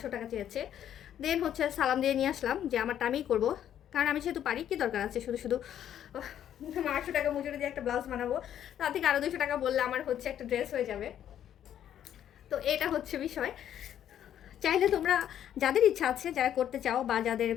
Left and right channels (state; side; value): quieter; right; 10.4 dB